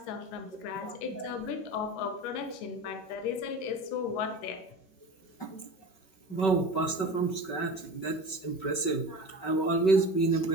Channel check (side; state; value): right; late; 5.3 ms